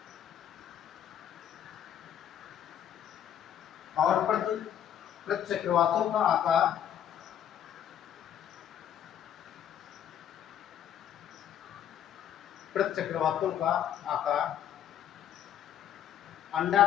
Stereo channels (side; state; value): right; quieter; 9.9 dB